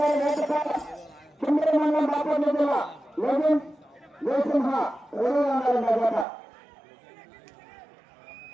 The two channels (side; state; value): left; drops out; at 6.2 s